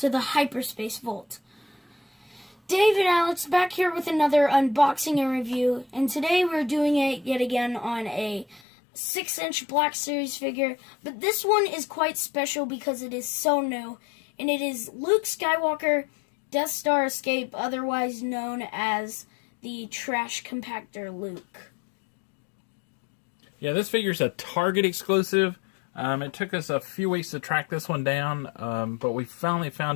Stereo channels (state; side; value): drops out; right; at 8.6 s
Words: the Hyperspace Vault. Dave and Alex back here with another unboxing and review, and today we're doing it yet again on a 6-inch Black Series figure, but this one is quite special because it is so new, and it is Luke Skywalker, Death Star Escape, otherwise known as the Trash Compactor Luke. Yeah, this figure's a Target exclusive. It took us a few weeks to track this one down, but we finally